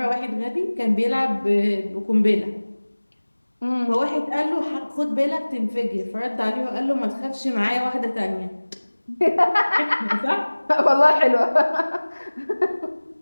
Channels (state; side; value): inverted; both; correlation -1.00